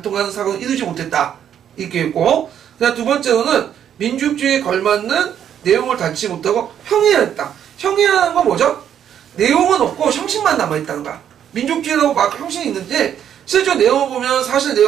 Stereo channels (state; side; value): quieter; left; 9.5 dB